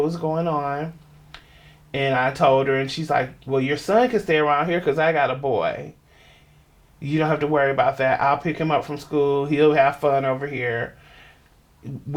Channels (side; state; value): both; identical; correlation 1.00